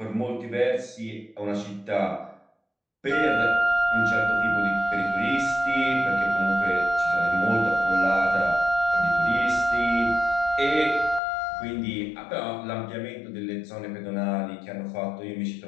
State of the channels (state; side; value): drops out; right; at 11.2 s